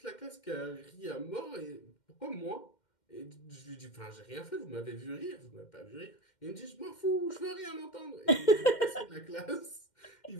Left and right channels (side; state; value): right; late; 2.1 ms